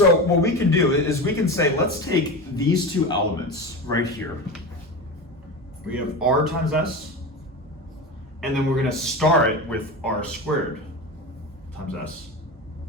what we can do is we can say, let's take these two elements right here. We have R times S, and then we're going to star it with R squared times S.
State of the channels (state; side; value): normal; both; correlation 0.24